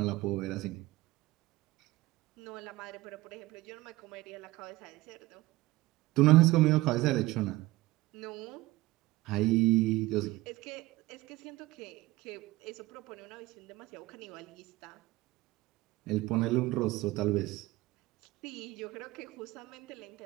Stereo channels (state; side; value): quieter; left; 18.9 dB